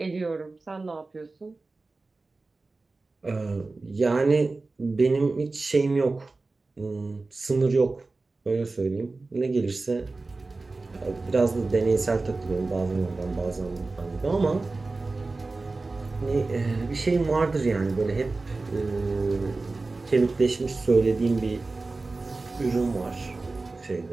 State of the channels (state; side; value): quieter; left; 3.5 dB